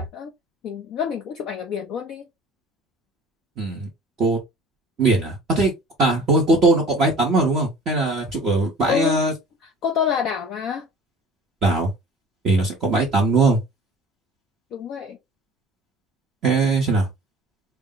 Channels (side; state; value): both; normal; correlation 0.46